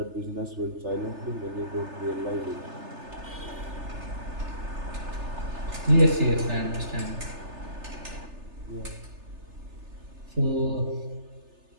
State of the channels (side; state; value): left; late; 3.3 ms